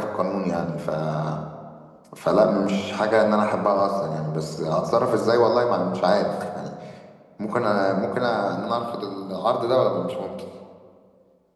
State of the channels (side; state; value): both; identical; correlation 1.00